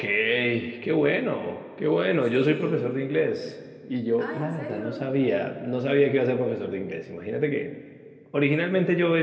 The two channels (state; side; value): identical; both; correlation 1.00